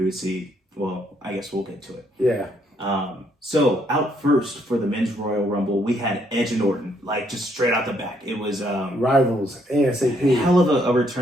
would see, well, I guess we'll get to it. Yeah. So out first for the men's Royal Rumble, we had Edge and Orton, like just straight out the back. It was rivals, ASAP. Hell of a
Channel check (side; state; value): both; normal; correlation 0.71